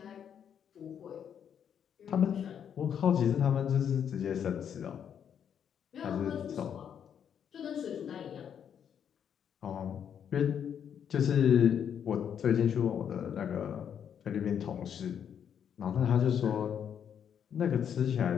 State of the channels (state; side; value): quieter; right; 8.4 dB